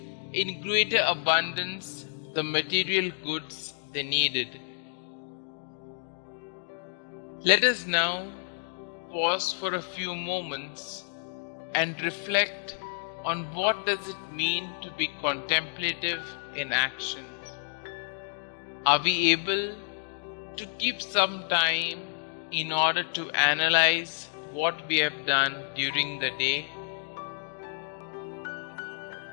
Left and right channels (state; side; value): silent; right; digital silence